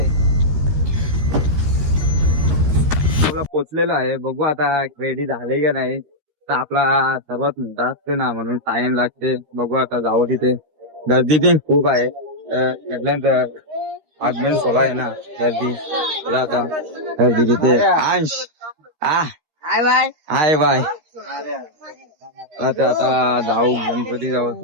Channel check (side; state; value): left; late; 13 ms